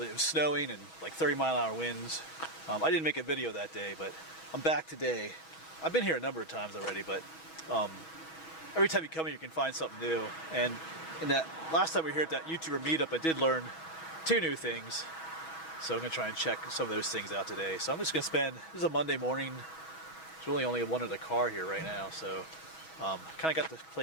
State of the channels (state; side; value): late; right; 6.2 ms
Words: it was snowing, and like 30-mile-an-hour winds. I didn't make a video that day, but I'm back today. I've been here a number of times already, but every time you come here, you can find something new. And in that last time we were here at that YouTuber meetup, I did learn 2 new things. So I'm going to try and check some of those things out today. So I'm just going to spend, this is a Monday morning. There's really only one other car here right now. So kind of got the